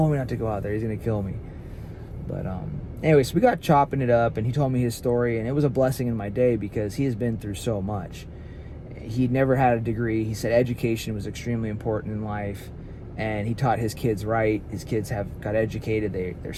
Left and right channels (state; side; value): identical; both; correlation 1.00